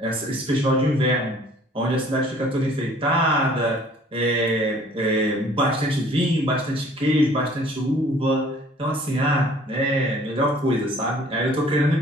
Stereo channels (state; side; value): normal; both; correlation 0.54